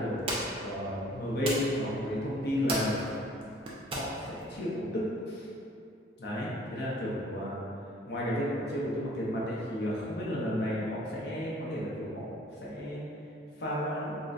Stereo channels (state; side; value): normal; both; correlation 0.54